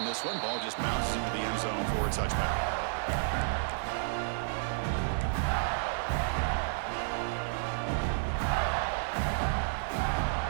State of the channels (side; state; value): left; silent; digital silence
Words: this one. Ball just bounces into the end zone for a touchback.